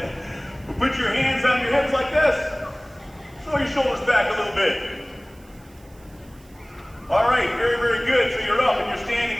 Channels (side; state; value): right; noise; hiss, 29 dB below the sound